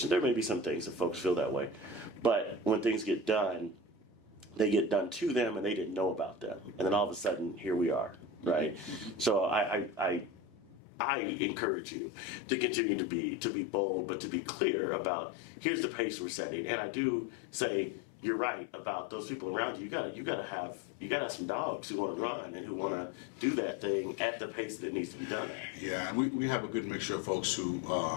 there may be some things that folks feel that way, but when things get done, they get done to them and they didn't know about them. And then all of a sudden, here we are, right? So I encourage you to continue to be bold, but to be clear about, here's the pace we're setting. And I do say, you're right about those people around you. You gotta have some dogs who want to run and who want to do that thing at the pace that it needs to be done at. Yeah, and we have a good mixture of folks who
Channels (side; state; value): right; drops out; at 10.8 s